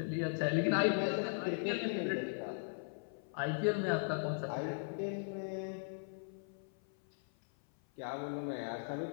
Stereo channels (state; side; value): silent; right; 52 dB below the other